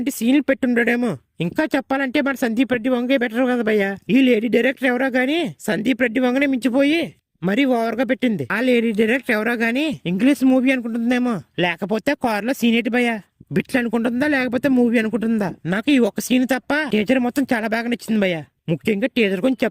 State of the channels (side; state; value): both; identical; correlation 1.00